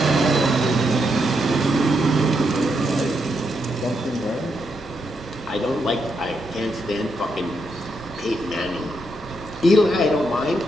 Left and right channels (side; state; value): both; normal; correlation 0.80